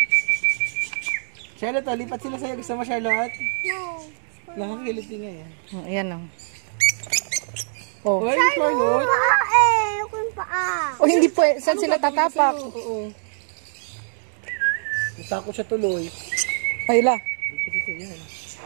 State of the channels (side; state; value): left; silent; digital silence